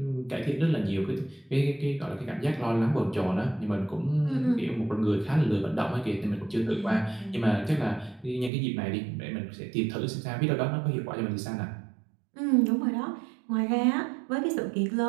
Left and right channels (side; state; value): left; drops out; at 8.5 s